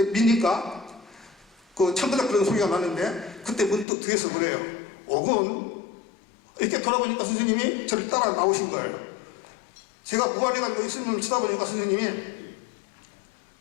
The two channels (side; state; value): right; drops out; at 3.9 s